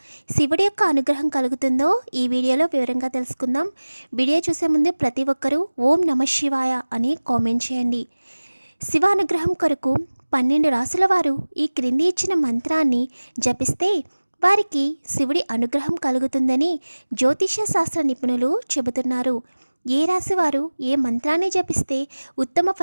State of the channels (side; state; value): both; inverted; correlation -1.00